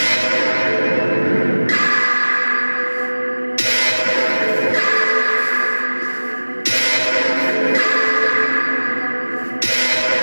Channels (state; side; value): inverted; both; correlation -1.00